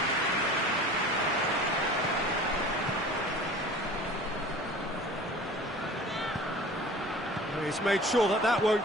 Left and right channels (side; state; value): left; noise; hum, 30 dB below the sound